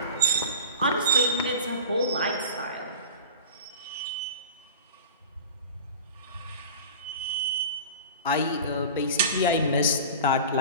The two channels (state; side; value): inverted; both; correlation -0.36